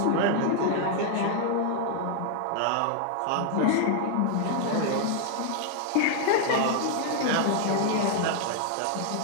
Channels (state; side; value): different; both; correlation 0.00